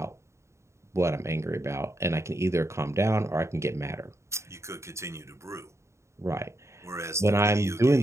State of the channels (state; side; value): late; left; 0.14 ms